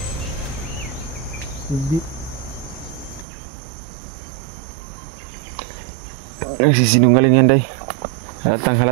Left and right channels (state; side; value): drops out; left; at 3.2 s